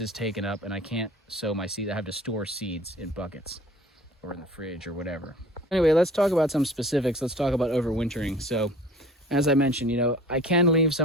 is taken up and I can't sow my seeds. I have to store seeds in buckets or in the fridge or whatever. Anyway, let's talk about some specifics. Let's talk about overwintering. So as I mentioned, I can leave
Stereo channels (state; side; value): normal; both; correlation 0.45